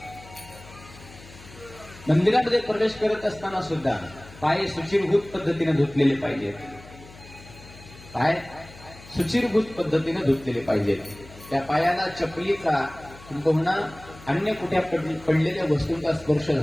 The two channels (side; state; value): left; noise; hum, 20 dB below the sound